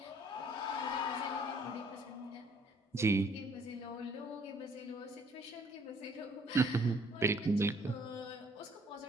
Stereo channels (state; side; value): normal; both; correlation 0.61